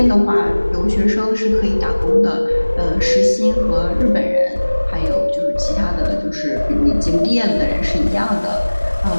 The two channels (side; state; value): both; inverted; correlation -1.00